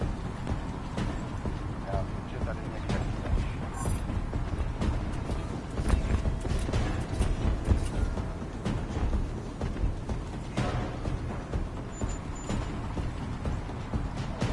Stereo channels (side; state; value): both; identical; correlation 1.00